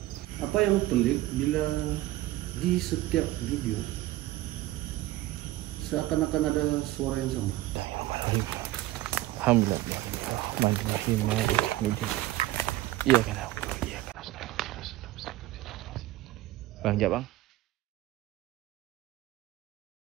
Apa yang pelik bila di setiap video seakan-akan ada suara yang sama. Alhamdulillah. Iya kan. Bang, jap bang.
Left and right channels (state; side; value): quieter; left; 16.6 dB